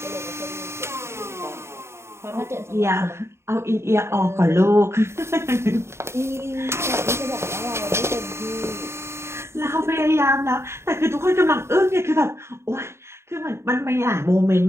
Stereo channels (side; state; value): left; late; 0.13 ms